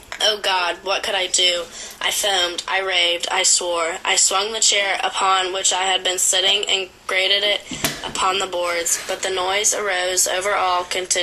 Oh God, what could I do? I foamed, I raved, I swore. I swung the chair upon which I had been sitting and grated it upon the boards, but the noise arose over all,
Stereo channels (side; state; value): both; identical; correlation 1.00